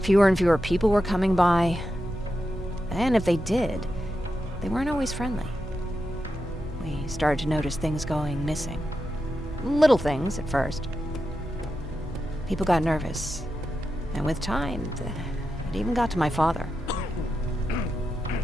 Fewer and fewer people were coming by, and if they did, they weren't always friendly. We started to notice things going missing. Little things at first. People got nervous, and with time, it even got to my father.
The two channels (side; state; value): both; normal; correlation 0.88